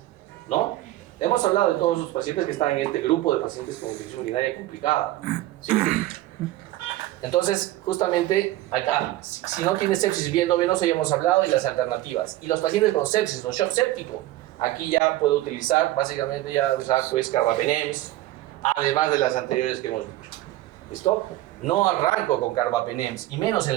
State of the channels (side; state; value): left; quieter; 16.0 dB